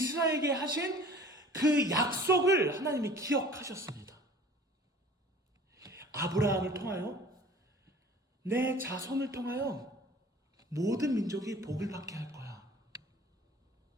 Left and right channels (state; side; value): normal; both; correlation 0.46